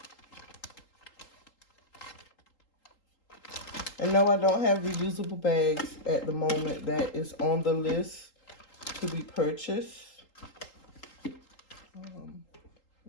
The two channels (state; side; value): late; right; 3.8 ms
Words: And no, I don't have reusable bags at the moment. That is on the list to be purchased. Really